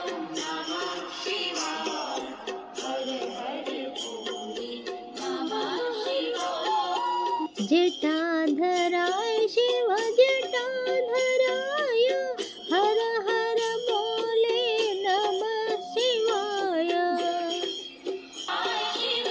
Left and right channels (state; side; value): identical; both; correlation 1.00